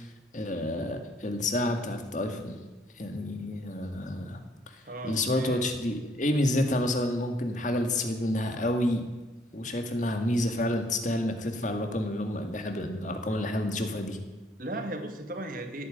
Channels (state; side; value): normal; both; correlation 0.65